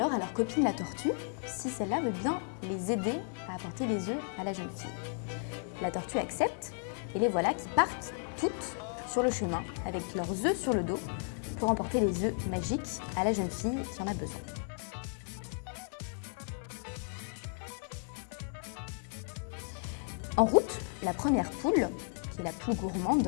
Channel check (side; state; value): right; silent; 55 dB below the other